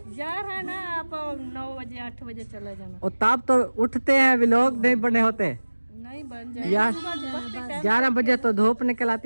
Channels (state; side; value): inverted; both; correlation -1.00